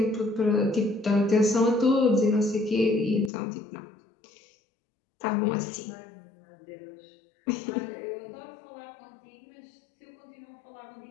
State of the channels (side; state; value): right; drops out; at 3.3 s